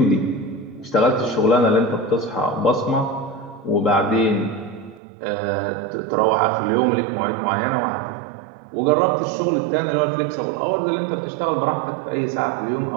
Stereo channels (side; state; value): left; drops out; at 5.0 s